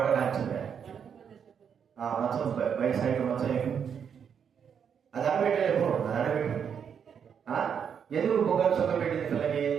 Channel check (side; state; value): left; quieter; 7.5 dB